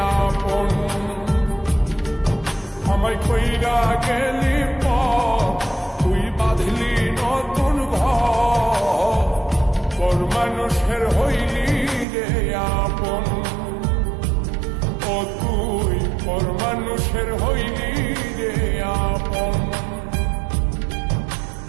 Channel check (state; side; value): drops out; left; at 12.1 s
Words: আপন। আমায় কইরা গেলি তুই বাঁধলি নতুন ঘর, পর মানুষের হইলি রে আপন। ও তুই পর মানুষের হইলি রে আপন।